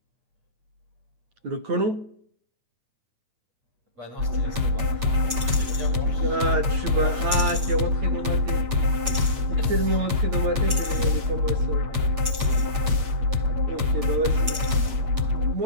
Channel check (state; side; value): late; left; 8.5 ms